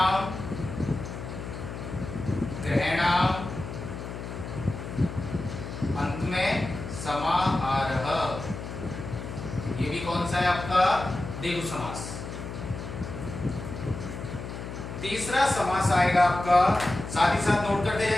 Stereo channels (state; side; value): noise; left; hum, 8 dB below the sound